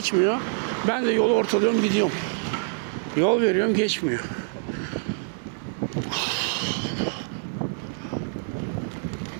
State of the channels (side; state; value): left; silent; 61 dB below the other